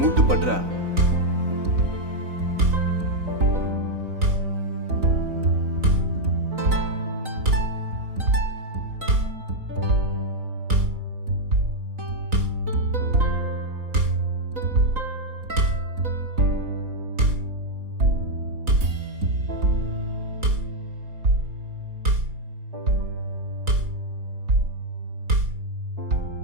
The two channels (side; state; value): left; late; 3.9 ms